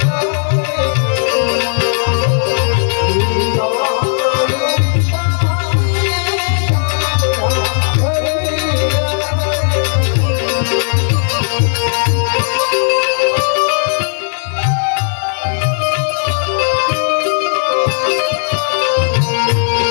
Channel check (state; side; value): silent; right; digital silence